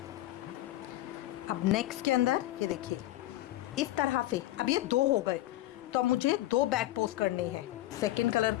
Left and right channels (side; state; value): right; quieter; 16.0 dB